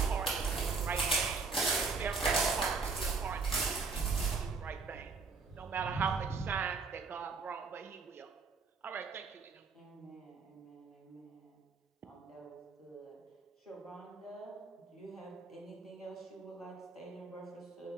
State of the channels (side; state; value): left; quieter; 4.5 dB